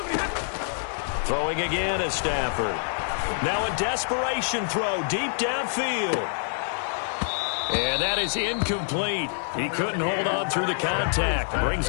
Throwing again is Stafford. Now a desperation throw deep downfield. And that is incomplete. He couldn't hold on through the contact. Brings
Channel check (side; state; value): right; silent; digital silence